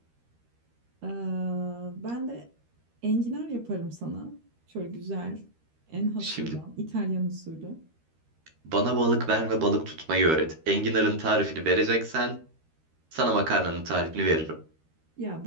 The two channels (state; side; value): late; left; 13 ms